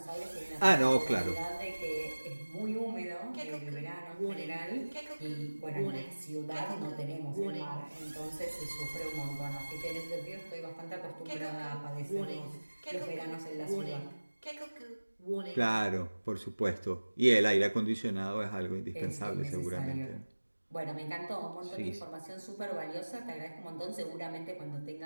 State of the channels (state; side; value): inverted; both; correlation -1.00